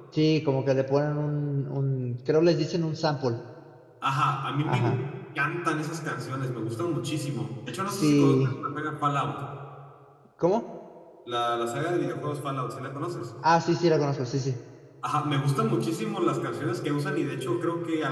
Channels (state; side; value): identical; both; correlation 1.00